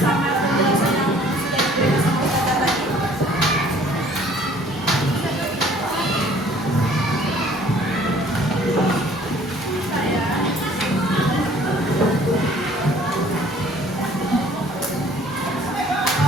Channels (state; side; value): normal; both; correlation 0.55